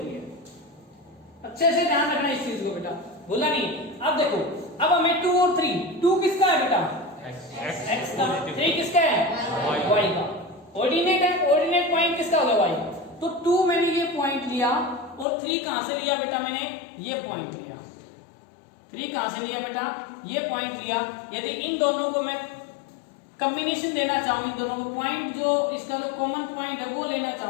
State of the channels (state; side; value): drops out; right; at 15.2 s